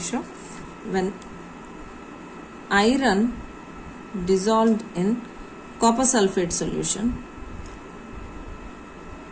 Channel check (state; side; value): identical; both; correlation 1.00